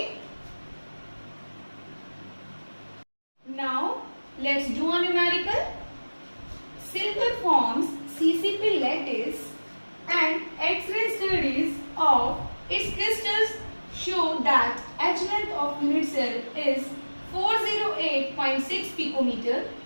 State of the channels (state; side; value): inverted; both; correlation -1.00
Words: Now let's do a numerical. Silver forms CCP lattice and X-ray studies of its crystals show that H length of unit cell is 408.6 picometer